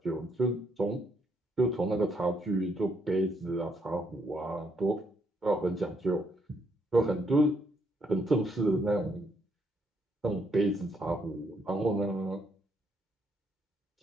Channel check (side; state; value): both; normal; correlation 0.74